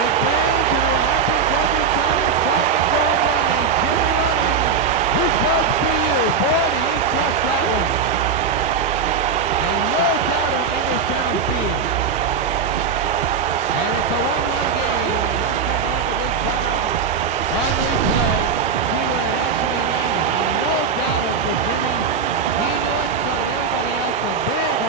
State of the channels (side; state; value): left; quieter; 5.9 dB